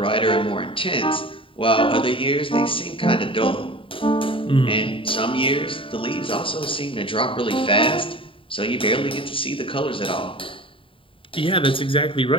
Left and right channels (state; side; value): late; right; 0.25 ms